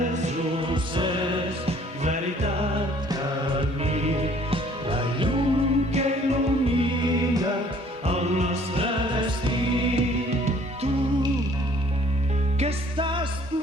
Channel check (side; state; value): both; normal; correlation 0.57